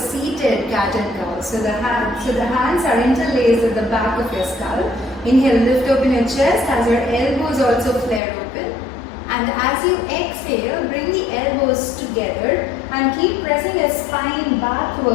cat and cow. So the hands are interlaced at the back of your skull. Inhale, lift open your chest as your elbows also flare open. And as you exhale, bring the elbows together and keep pressing your spine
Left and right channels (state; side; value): drops out; right; at 8.2 s